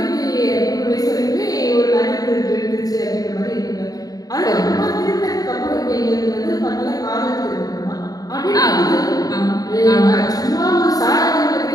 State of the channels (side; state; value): right; late; 0.18 ms